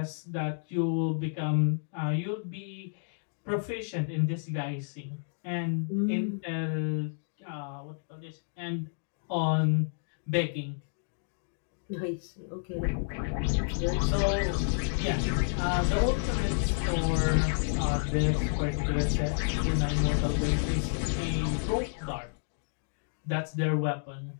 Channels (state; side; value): silent; right; digital silence